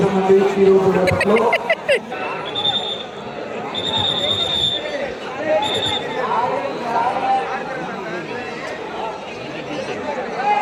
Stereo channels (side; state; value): both; identical; correlation 1.00